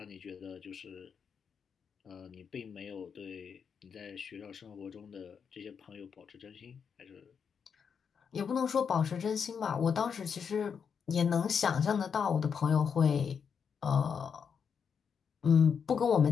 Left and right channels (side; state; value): right; quieter; 6.7 dB